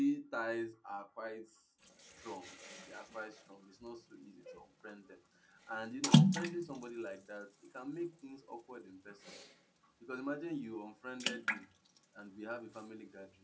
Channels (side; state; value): both; identical; correlation 1.00